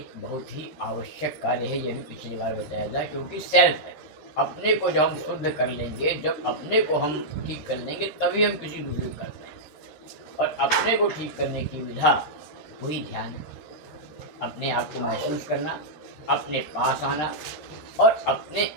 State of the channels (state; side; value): late; right; 13 ms